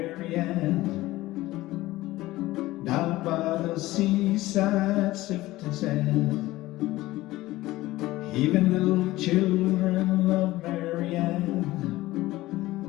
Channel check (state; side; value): quieter; right; 17.6 dB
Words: down by the seaside sifting sand. Even little children love Marianne,